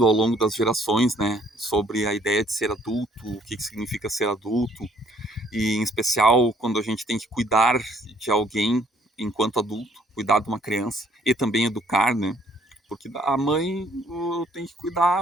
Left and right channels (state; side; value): normal; both; correlation 0.62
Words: ao longo das gerações, né, sobre a ideia de ser adulto, o que significa ser adulto, e em especial quando a gente tem que cuidar de alguém enquanto adulto, cuidar de uma criança e também educar, né, porque a mãe tem que